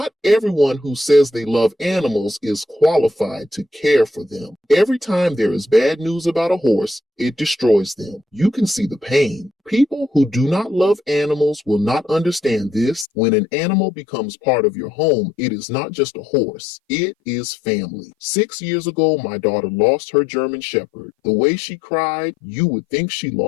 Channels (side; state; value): right; drops out; at 13.1 s